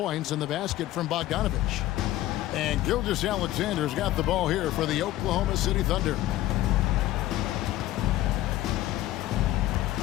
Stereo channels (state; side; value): quieter; right; 15.1 dB